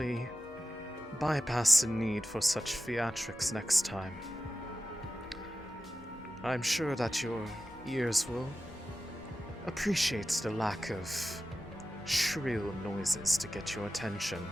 bypass the need for such theatrics next time. I'm sure that your ears will appreciate the lack of shrill noises to get your attention.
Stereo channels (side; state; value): both; normal; correlation 0.94